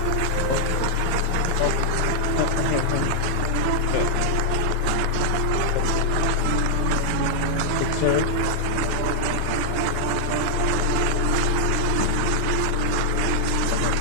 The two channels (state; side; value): different; both; correlation 0.00